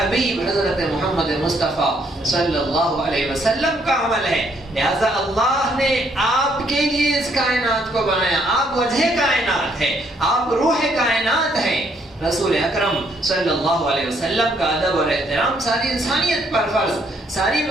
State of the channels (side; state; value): both; normal; correlation 0.70